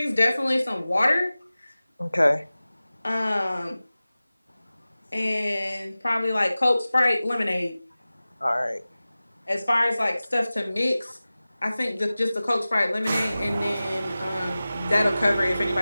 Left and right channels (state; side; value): inverted; both; correlation -0.97